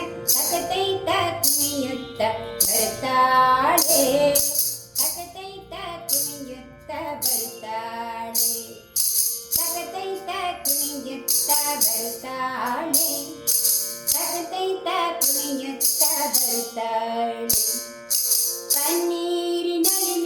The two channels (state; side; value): identical; both; correlation 1.00